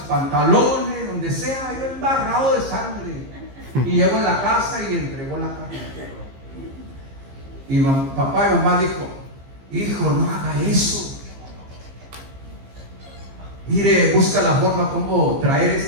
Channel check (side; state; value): left; late; 15 ms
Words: pantalones, donde sea, yo embarrado de sangre. Y llegó a la casa y entregó la carne. Y papá y mamá dijo, hijo, no haga eso. Mire, busca la forma como traer